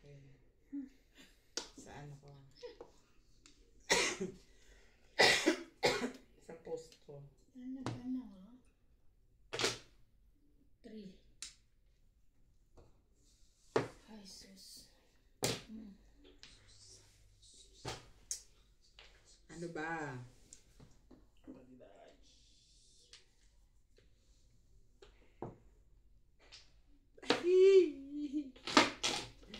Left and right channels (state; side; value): identical; both; correlation 1.00